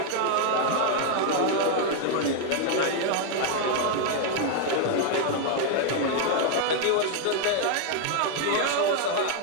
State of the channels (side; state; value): both; different; correlation 0.00